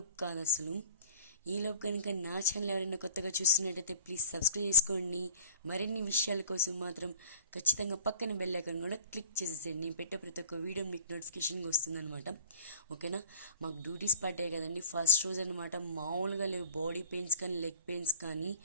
కాదు అసలు. ఈలోపు కనుక నా ఛానల్ ఎవరైనా కొత్తగా చూస్తున్నట్టయితే ప్లీజ్ సబ్స్క్రైబ్ చేసుకోండి. మరిన్ని విషయాల కోసం మాత్రం ఖచ్చితంగా పక్కన బెల్ ఐకాన్ కూడా క్లిక్ చేసేసేయండి. నేను పెట్టే ప్రతి ఒక్క వీడియో మీకు నోటిఫికేషన్గా వస్తుందన్నమాట. ఓకేనా? మాకు డ్యూటీస్ పడ్డాయి కదండి, ఫస్ట్ రోజు అనమాట. మామూలుగా లేవు బాడీ పెయిన్స్ కానీ లెగ్ పెయిన్స్ కానీ.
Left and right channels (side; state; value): both; inverted; correlation -0.45